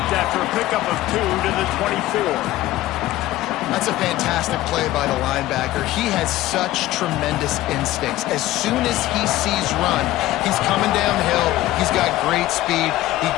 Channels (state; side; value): quieter; right; 15.9 dB